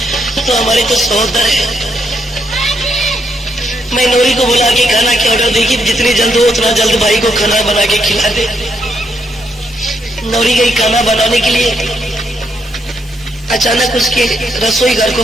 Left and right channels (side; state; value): both; normal; correlation 0.77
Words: तो हमारे तो सहोदर है। मैं नौरी को बुला के खाना के ऑर्डर दी कि जितनी जल्द हो उतना जल्द भाई को खाना बना के खिला दे। नौरी गई खाना बनाने के लिए, अचानक उसके रसोई घर को